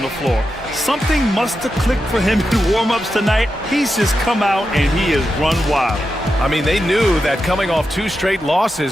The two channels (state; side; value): normal; both; correlation 0.89